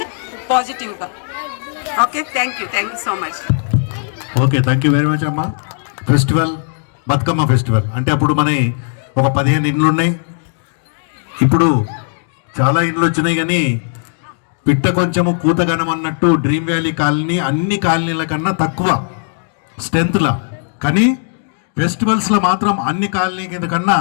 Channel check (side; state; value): right; silent; digital silence